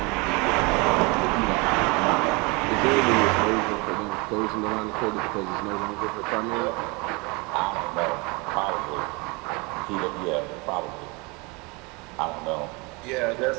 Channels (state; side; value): quieter; left; 27.8 dB